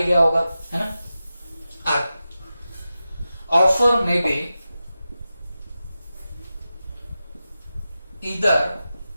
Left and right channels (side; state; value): both; inverted; correlation -0.92